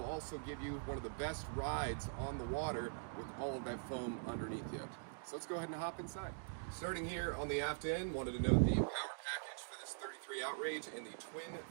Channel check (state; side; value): silent; left; digital silence